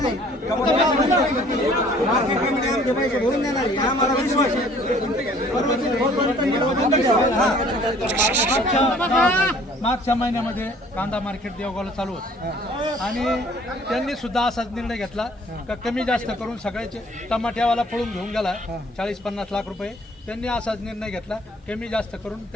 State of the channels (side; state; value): both; normal; correlation 0.55